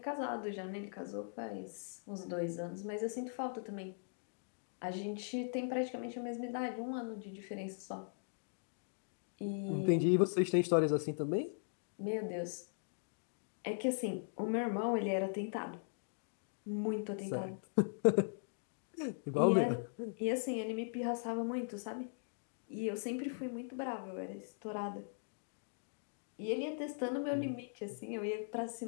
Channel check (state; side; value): silent; right; digital silence